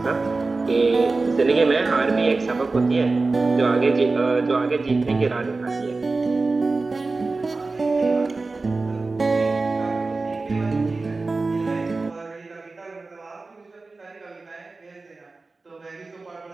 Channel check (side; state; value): left; quieter; 3.7 dB